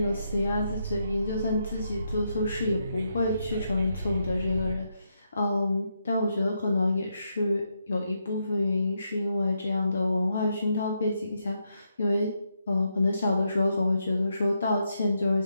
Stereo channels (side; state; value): both; inverted; correlation -0.81